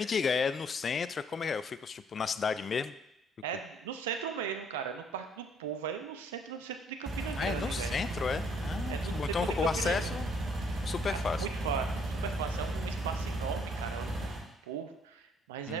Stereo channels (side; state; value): both; normal; correlation 0.65